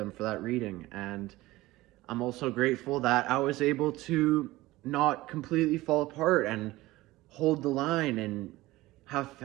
for that reading, and I'm also grateful that I was able to not completely fall apart and hold the line and have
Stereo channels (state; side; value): quieter; left; 18.5 dB